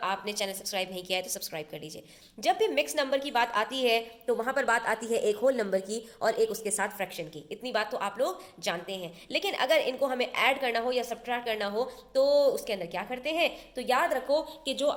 चैनल सब्सक्राइब नहीं किया है तो सब्सक्राइब कर लीजिए। जब भी मिक्स नंबर की बात आती है तो वहां पर बात आती है एक होल नंबर की और एक उसके साथ फ्रैक्शन की। इतनी बात तो आप लोग जानते हैं। लेकिन अगर इनको हमें ऐड करना हो या सब्ट्रैक्ट करना हो तो उसके अंदर क्या करते हैं। तो याद रखो कि जो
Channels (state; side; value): identical; both; correlation 1.00